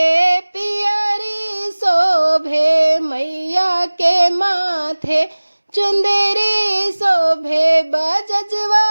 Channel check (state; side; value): inverted; both; correlation -1.00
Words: पियरी शोभे, मैया के माथे चुंदरी शोभे।